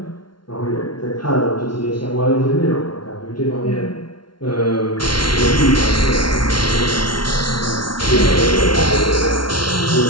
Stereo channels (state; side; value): late; right; 0.72 ms